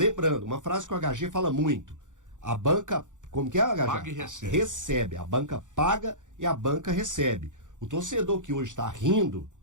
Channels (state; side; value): late; left; 0.86 ms